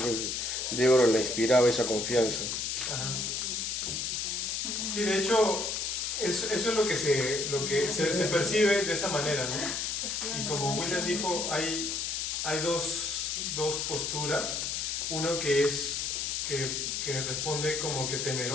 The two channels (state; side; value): noise; left; hiss, 1 dB below the sound